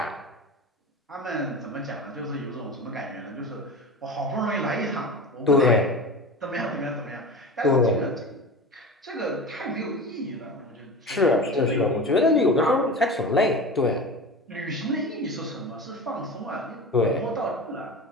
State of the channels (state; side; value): normal; both; correlation 0.30